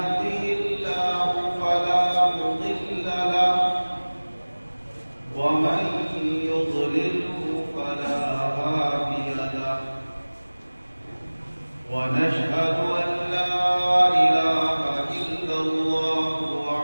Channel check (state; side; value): inverted; both; correlation -1.00